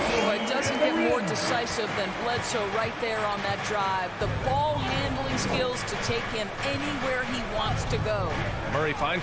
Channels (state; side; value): identical; both; correlation 1.00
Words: it doesn't get more decisive than Bledsoe right there on that drive. The ball handling skills to take him anywhere he wants to go. Murray